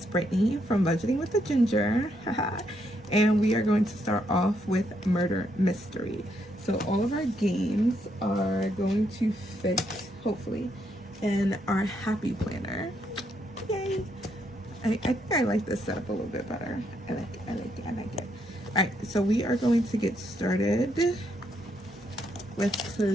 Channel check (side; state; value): both; normal; correlation 0.76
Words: Brittany from Budgeting with the Ginger. And we are going to start off with Murder Mystery. So all of our games are going to fit, hopefully, in our Happy Planner. Yay! I think I like this setup a little bit better. I like it. Alright, so we are going to get started with